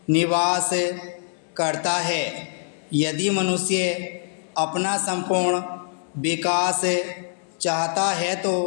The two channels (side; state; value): right; silent; digital silence